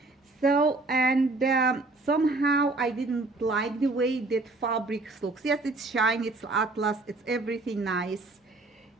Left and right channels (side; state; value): left; quieter; 3.2 dB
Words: So, and somehow I didn't like the way that fabric looks. Yes, it's shiny, it's atlas, it's everything nice.